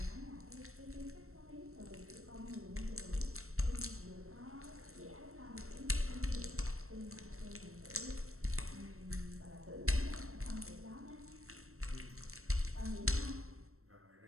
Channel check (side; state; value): left; late; 0.63 ms